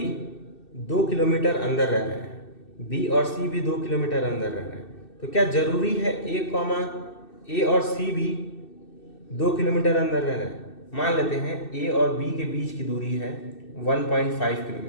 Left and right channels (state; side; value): late; right; 2.6 ms